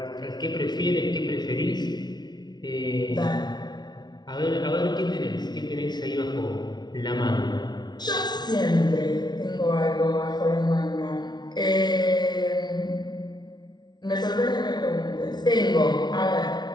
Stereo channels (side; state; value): right; late; 0.20 ms